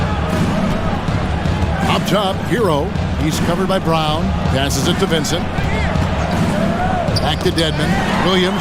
Up top, Hero. He's covered by Brown. Passes it to Vincent. Back to Dedmon.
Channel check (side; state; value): both; identical; correlation 1.00